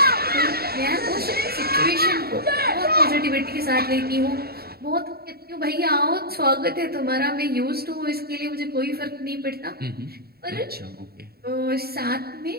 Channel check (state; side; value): late; left; 0.45 ms